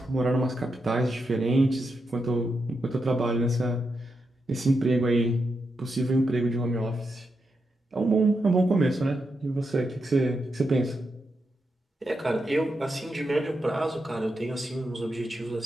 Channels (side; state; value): both; normal; correlation 0.85